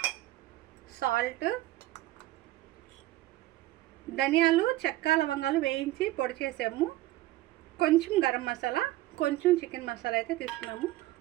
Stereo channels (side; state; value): left; quieter; 16.7 dB